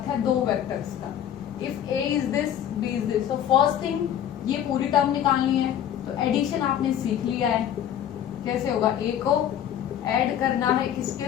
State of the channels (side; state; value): right; quieter; 10.2 dB